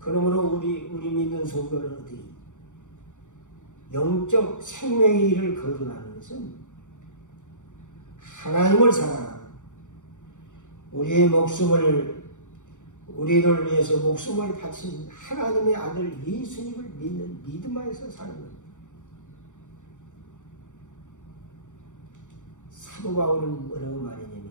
우리 믿는 성도는 어떻게 영적 생명의 일을 거듭하는 것은 하나님을 사랑하고 우리를 위해서 목숨을 바친 하나님의 아들 예수님을 믿는 믿음 안에서 사는 겁니다. 사도 바울은 뭐라고 말했냐면,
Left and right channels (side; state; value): right; late; 0.86 ms